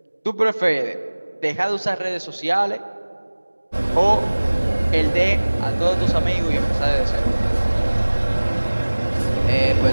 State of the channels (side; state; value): both; inverted; correlation -1.00